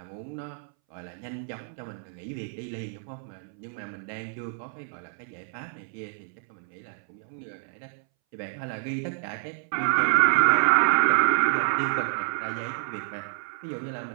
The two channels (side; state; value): left; silent; 59 dB below the other